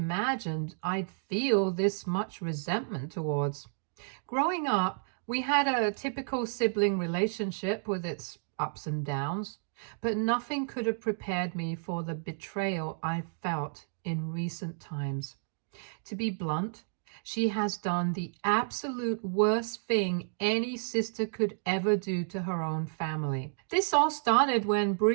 I'd feel this much resentment towards. Growing up, we had a typical sibling relationship with its ups and downs, but nothing could have prepared me for the betrayal I felt in recent times. To be blunt, she has done the absolute worst thing any sister could ever do to her own family. This all started when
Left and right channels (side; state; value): left; silent; digital silence